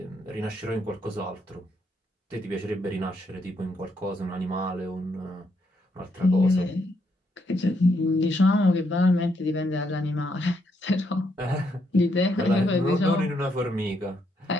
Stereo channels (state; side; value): normal; both; correlation 0.76